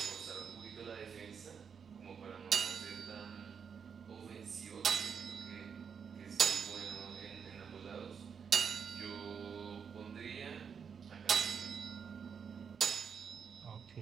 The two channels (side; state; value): left; quieter; 6.7 dB